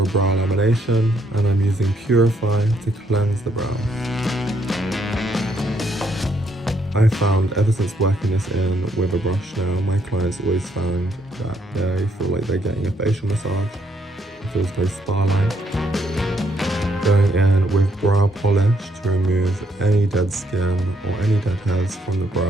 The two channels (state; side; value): normal; both; correlation 0.72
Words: brow lamination, and I'm using Purify to cleanse the brows. I found ever since working this in with a brush now, my clients always found that they feel like they're getting a facial massage. It feels very spa-like. Going in with brow polish to remove any dead skin or any dead hairs from the